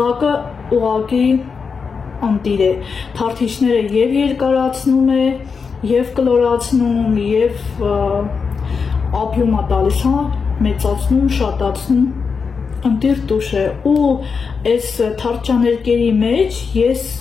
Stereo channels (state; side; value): quieter; right; 5.5 dB